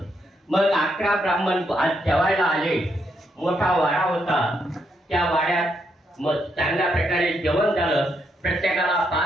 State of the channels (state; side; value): normal; both; correlation 0.78